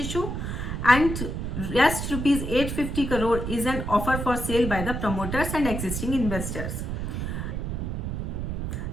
and rest Rs 850 crore is an offer for sale by the promoters and existing investors.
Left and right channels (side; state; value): right; noise; rumble, 3 dB below the sound